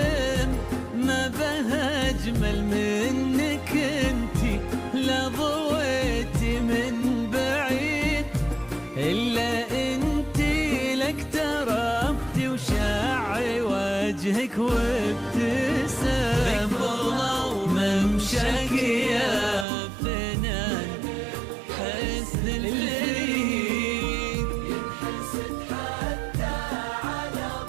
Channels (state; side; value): drops out; left; at 19.7 s